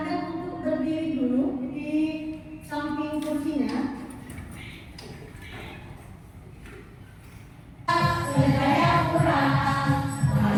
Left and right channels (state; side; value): identical; both; correlation 1.00